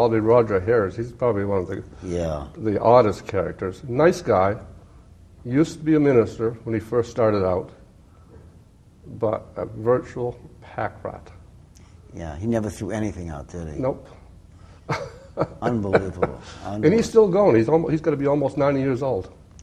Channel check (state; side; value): identical; both; correlation 1.00